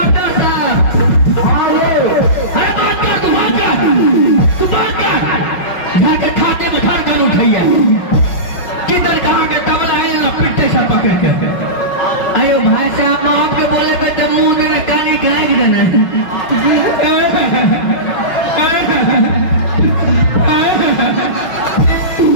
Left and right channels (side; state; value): right; late; 5.4 ms